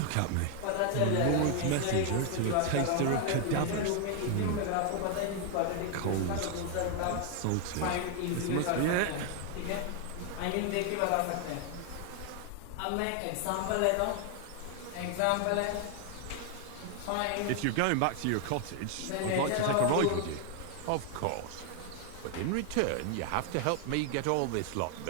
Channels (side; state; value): both; different; correlation 0.01